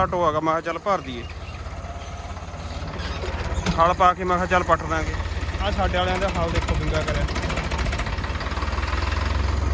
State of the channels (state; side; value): identical; both; correlation 1.00